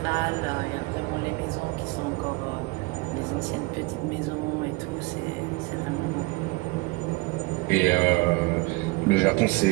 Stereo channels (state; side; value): quieter; left; 25.0 dB